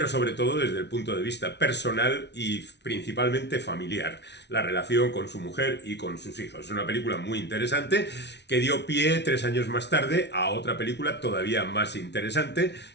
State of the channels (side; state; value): right; late; 0.50 ms